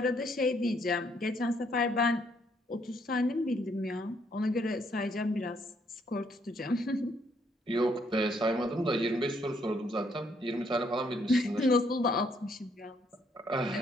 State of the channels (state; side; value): normal; both; correlation 0.70